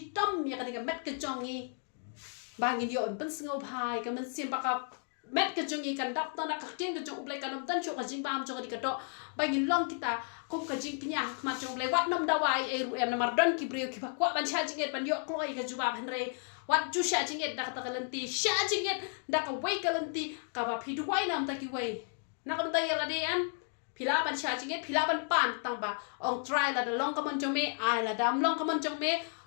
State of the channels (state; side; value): silent; right; 56 dB below the other